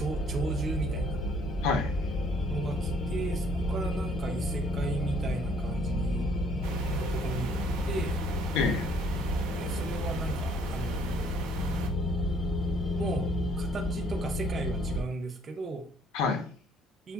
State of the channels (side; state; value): both; normal; correlation 0.62